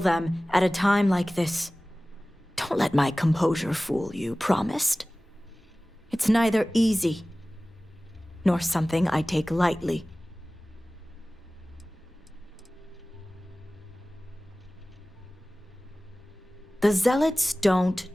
at a time like this. Don't let my composure fool you, promised? It's neither easy nor something I take lightly. The Zealots don't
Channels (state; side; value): normal; both; correlation 0.98